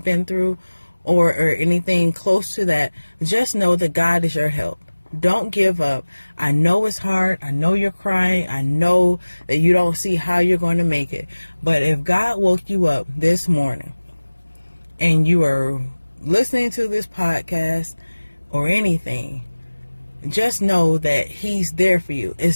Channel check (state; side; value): inverted; both; correlation -1.00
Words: been through or anything close to that, just know that God is your help. Don't give up. I know it's hard. I know you're crying. I know that you don't see how you're going to make it. But if God woke you up this morning, and you are listening to this podcast or anything, just know that he's there for you.